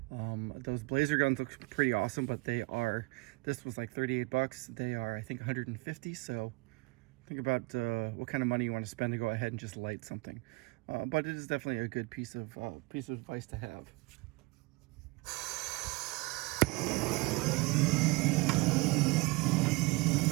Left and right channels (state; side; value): quieter; left; 25.3 dB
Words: Those Blazer guns look pretty awesome, but they are, this was like 38 bucks. They are, I think, 150. So think about what kind of money you want to spend to go ahead and just light something. But it is definitely a good piece of advice to have.